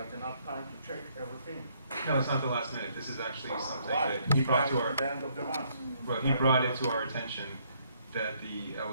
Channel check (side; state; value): both; inverted; correlation -0.69